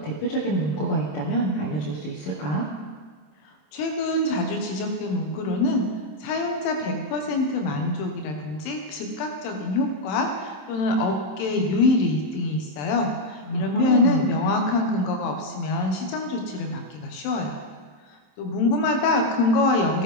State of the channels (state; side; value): late; right; 27 ms